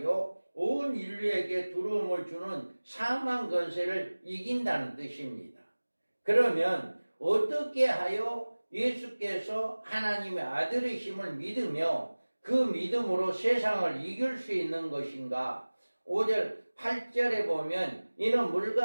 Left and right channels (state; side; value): inverted; both; correlation -1.00